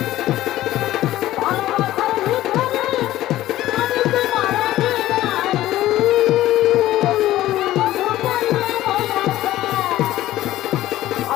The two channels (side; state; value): right; quieter; 14.8 dB